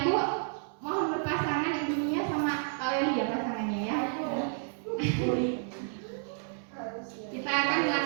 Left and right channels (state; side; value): silent; left; 57 dB below the other